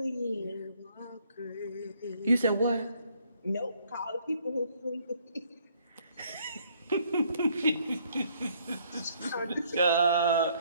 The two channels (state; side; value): inverted; both; correlation -0.65